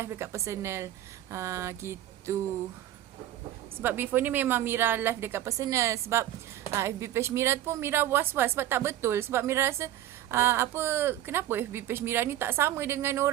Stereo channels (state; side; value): quieter; left; 12.8 dB